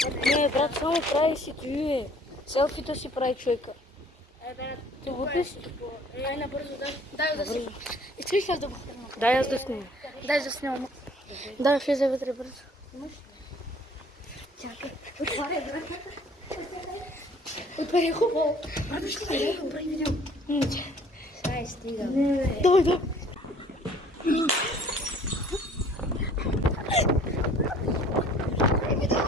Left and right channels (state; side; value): normal; both; correlation 0.55